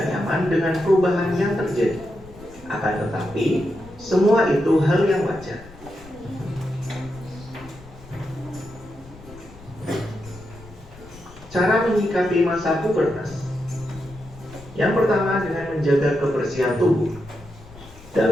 nyaman dengan perubahan yang terjadi. Akan tetapi, semua itu hal yang wajar. Cara menyikapi masa pubertas. Yang pertama, dengan menjaga kebersihan tubuh.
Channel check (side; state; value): left; noise; rumble, 20 dB below the sound